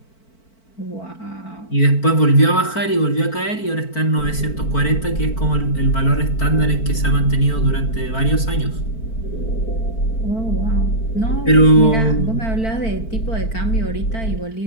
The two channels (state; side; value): late; right; 4.5 ms